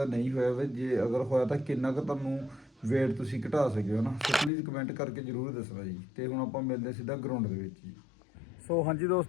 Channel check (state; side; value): drops out; right; at 4.5 s